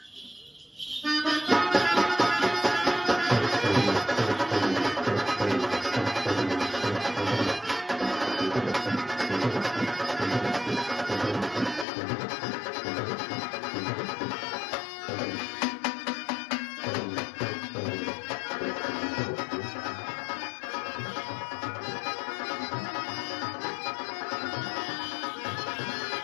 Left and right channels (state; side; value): drops out; right; at 11.9 s